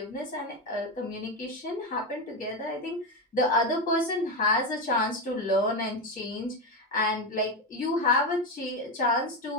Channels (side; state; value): both; normal; correlation 0.13